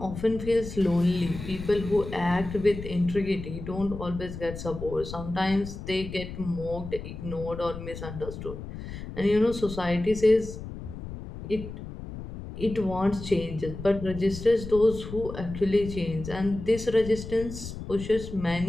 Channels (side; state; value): left; noise; rumble, 10 dB below the sound